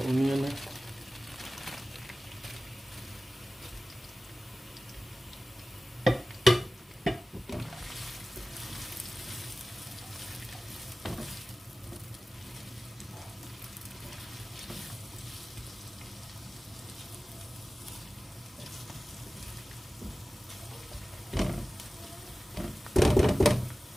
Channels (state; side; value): normal; both; correlation 0.96